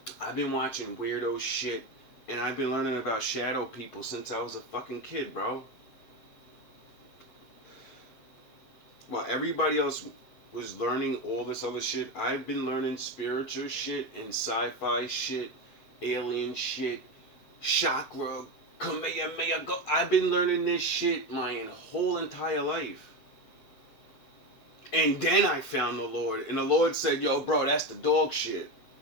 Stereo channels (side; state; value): right; late; 8.0 ms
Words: I've been watching weirdo shit. And I've been learning about shadow people since I was a fucking kid, bro. While everybody else was learning all this other shit, I've been learning spiritual shit and sci-fi shit, alien shit, chakra, Kamehameha. I've been learning this shit my whole entire life. And then I found the Lord. And the Lord said, yo, bro, that's the dog shit.